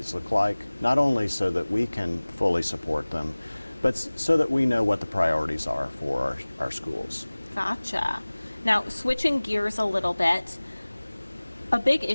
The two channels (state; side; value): inverted; both; correlation -1.00